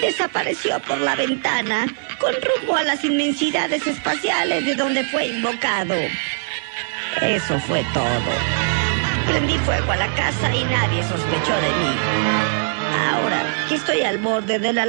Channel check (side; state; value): left; silent; digital silence